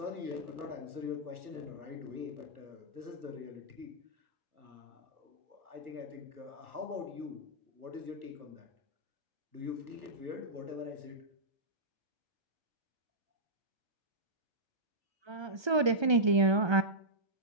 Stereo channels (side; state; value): left; late; 1.3 ms